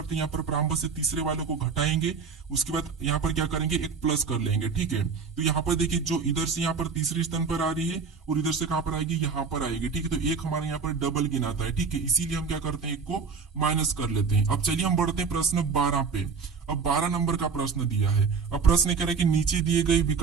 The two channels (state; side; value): quieter; left; 5.4 dB